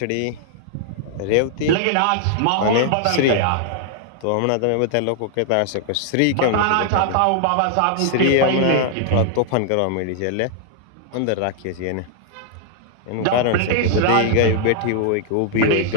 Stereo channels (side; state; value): both; different; correlation 0.00